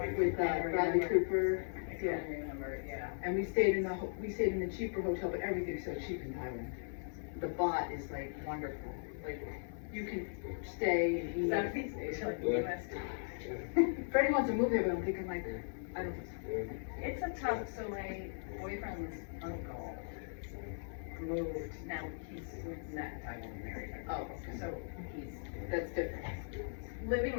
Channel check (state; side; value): silent; right; 52 dB below the other